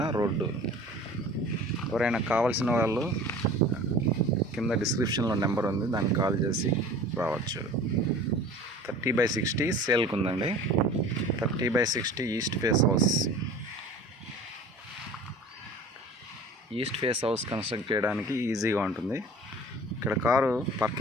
రోడ్డు. ఎవరైనా కావాల్సిన వాళ్ళు కింద డిస్క్రిప్షన్లో నెంబర్ ఉంది, దానికి కాల్ చేసి రావచ్చు. 30x60 సేల్కి ఉందండి. 30x60 east face house. East face house construct చేయడానికి ఈజీగా ఉంటుంది. ఇక్కడ కారు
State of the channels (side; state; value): both; normal; correlation 0.43